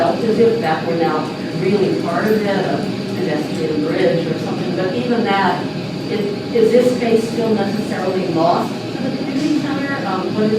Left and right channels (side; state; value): both; identical; correlation 1.00